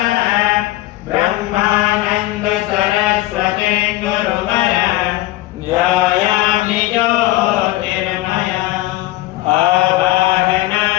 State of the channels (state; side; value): quieter; right; 17.1 dB